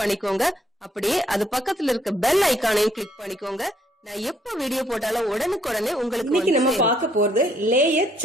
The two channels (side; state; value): both; normal; correlation 0.69